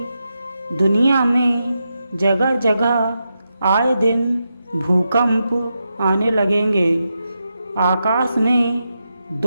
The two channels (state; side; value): inverted; both; correlation -0.87